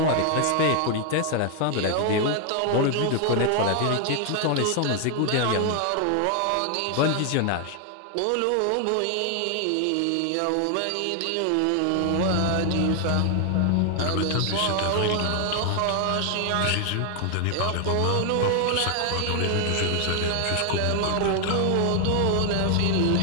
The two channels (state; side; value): different; both; correlation 0.00